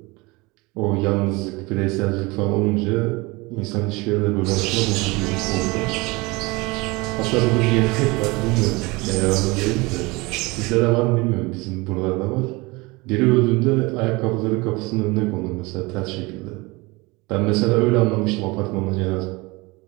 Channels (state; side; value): quieter; left; 24.4 dB